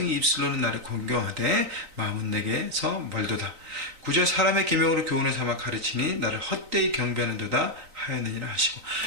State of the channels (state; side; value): late; left; 3.9 ms